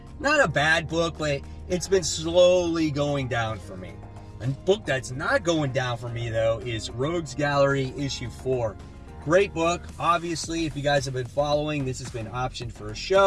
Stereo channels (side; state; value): both; identical; correlation 1.00